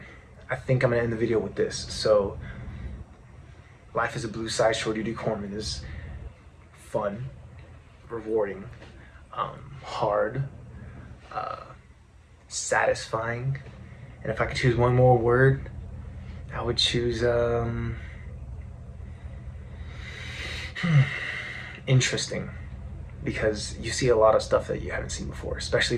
I think I'm gonna end the video with this. So, life as a blue side shore duty corpsman is fun, rewarding, hard, satisfying, and if I could choose one more word, I would choose interesting, because you see a lot of stuff that you haven't seen before, especially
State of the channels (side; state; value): both; identical; correlation 1.00